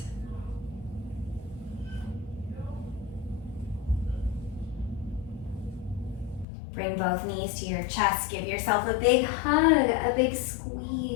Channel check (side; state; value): right; drops out; at 6.5 s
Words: Bring both knees to your chest. Give yourself a big hug, a big